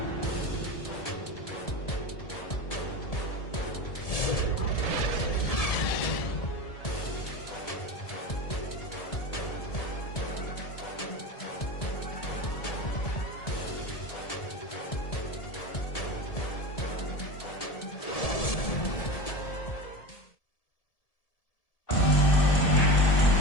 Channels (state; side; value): late; right; 1.7 ms